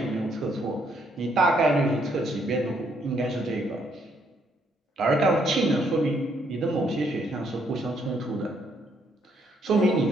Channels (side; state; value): both; normal; correlation 0.71